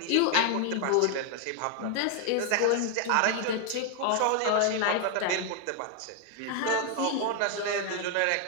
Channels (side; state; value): both; different; correlation 0.00